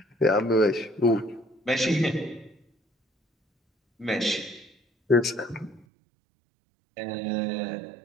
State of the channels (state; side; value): drops out; left; at 5.9 s